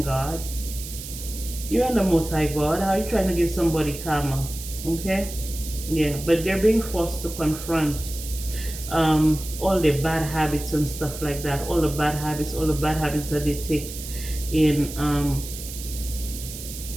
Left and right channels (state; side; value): noise; right; hiss, 11 dB below the sound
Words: God. You ain't the Most High God. How are you trying to give somebody karma, okay? Yeah, but they're being forced to confront all the bad habits and stuff like that, all the bad habits that they take in